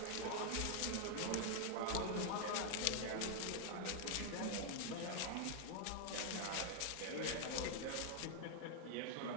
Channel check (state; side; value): different; both; correlation 0.00